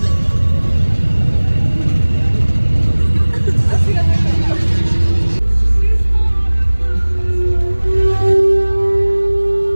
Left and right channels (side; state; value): both; inverted; correlation -1.00